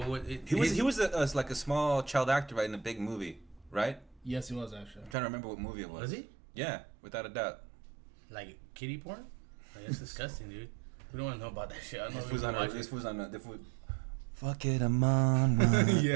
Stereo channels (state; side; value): drops out; left; at 5.2 s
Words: He was like a small child actor, right, in a big movie, right? Yes, he was actually. I'm trying to remember what movie it was. Was he? Yeah, without a doubt. Like kitty porn? Like, that's disgusting, dude. We don't want to know about that shit. I don't know This if we was can watch on it. this was fuck it, I'm on one.